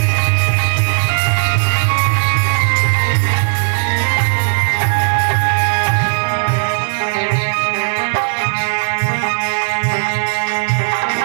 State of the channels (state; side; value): silent; left; digital silence